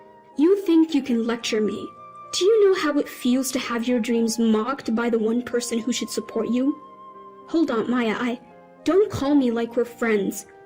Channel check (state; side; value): identical; both; correlation 1.00